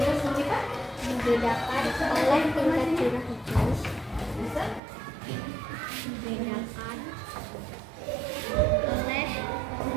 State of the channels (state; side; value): drops out; left; at 4.8 s